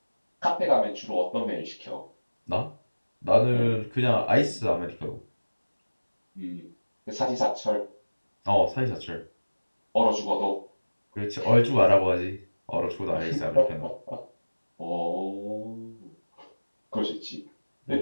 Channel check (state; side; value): inverted; both; correlation -1.00